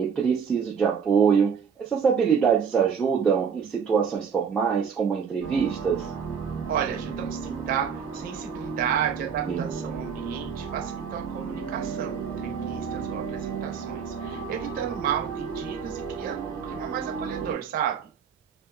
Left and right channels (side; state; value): left; quieter; 6.7 dB